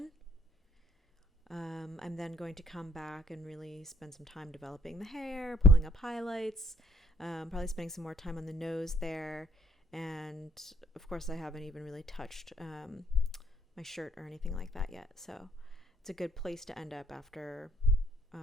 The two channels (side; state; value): both; normal; correlation 0.63